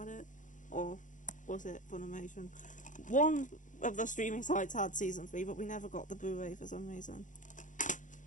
it, or was it Funimation? One of the streaming sites had Season 3, but we never got the Blu-ray for some reason.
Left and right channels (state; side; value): late; right; 0.37 ms